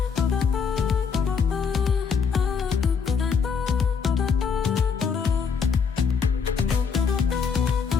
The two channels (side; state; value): right; quieter; 6.0 dB